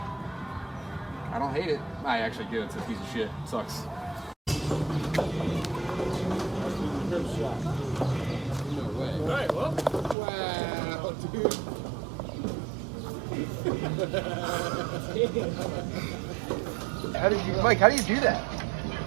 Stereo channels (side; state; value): left; drops out; at 10.2 s